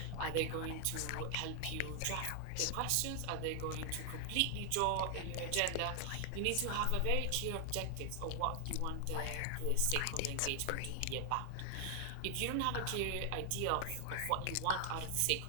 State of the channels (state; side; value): different; both; correlation 0.00